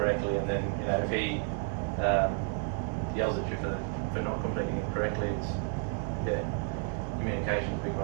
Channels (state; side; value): quieter; left; 39.3 dB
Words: and then if he yells at you for not completing it correctly, it's communication's a big